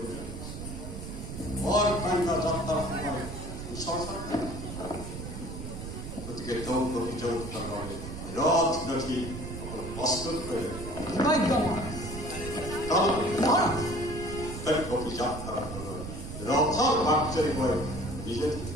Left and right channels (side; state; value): right; noise; rumble, 8 dB below the sound